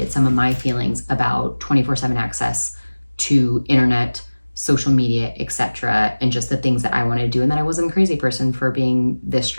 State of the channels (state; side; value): inverted; both; correlation -1.00